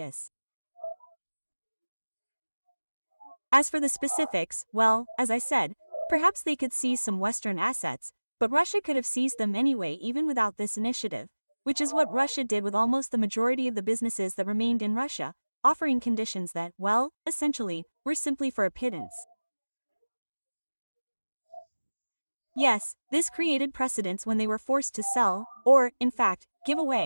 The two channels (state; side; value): inverted; both; correlation -1.00